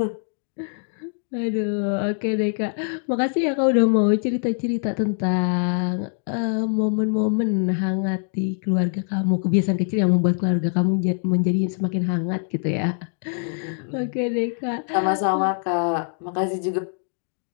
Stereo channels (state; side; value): silent; right; 57 dB below the other